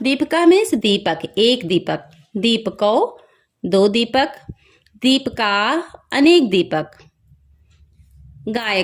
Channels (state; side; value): identical; both; correlation 1.00